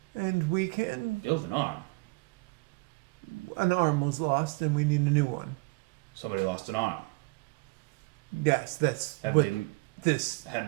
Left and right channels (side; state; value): left; quieter; 26.3 dB